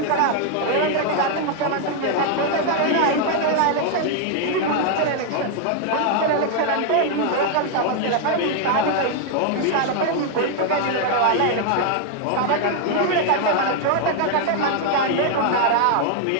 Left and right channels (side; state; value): both; different; correlation 0.00